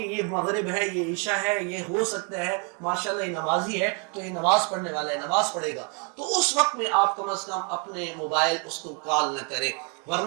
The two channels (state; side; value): quieter; left; 35.2 dB